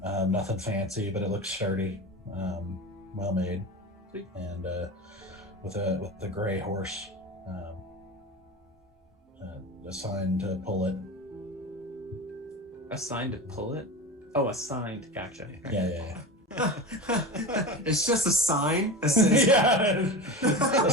nothing fancy, but it looks sturdy, well made, Sweet. And with a gray horse assigned to pull it. Assigned to pull it? Oh, assigned. Gotcha. Yeah. It's just a sign that says Yeah, a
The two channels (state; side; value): normal; both; correlation 0.27